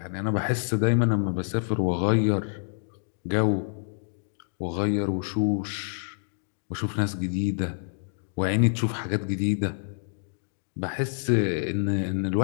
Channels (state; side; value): silent; right; digital silence